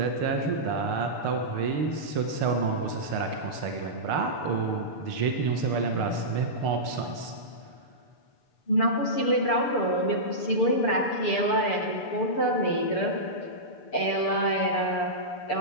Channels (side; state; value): right; late; 6.8 ms